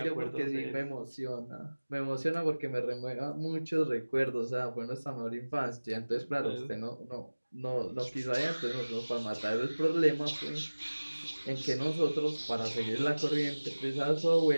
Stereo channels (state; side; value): inverted; both; correlation -1.00